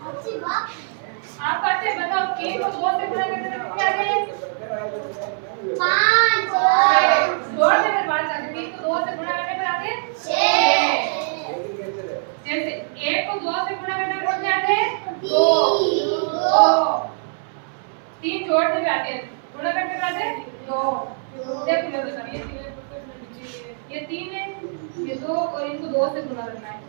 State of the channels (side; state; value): left; silent; 62 dB below the other